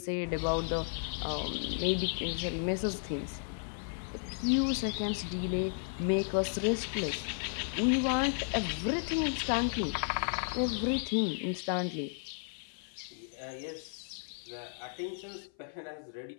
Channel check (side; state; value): right; silent; 55 dB below the other